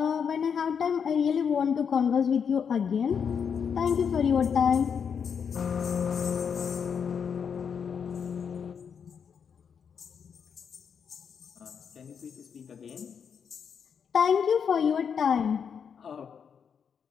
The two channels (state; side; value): quieter; right; 7.0 dB